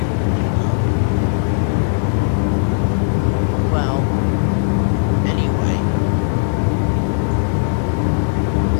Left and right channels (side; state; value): right; silent; 68 dB below the other